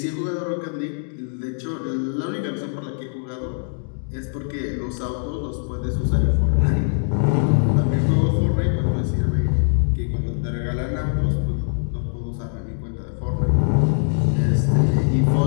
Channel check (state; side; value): silent; right; digital silence